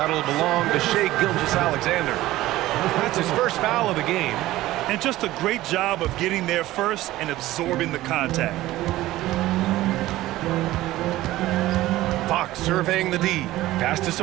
belong to Shai Gilgeous-Alexander. That's his first foul of the game. And just a great job of getting there first and absorbing the contact. Fox surveying the D. Pass to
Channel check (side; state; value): left; quieter; 16.3 dB